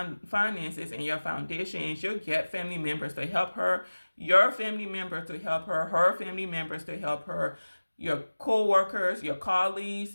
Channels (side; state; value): both; inverted; correlation -1.00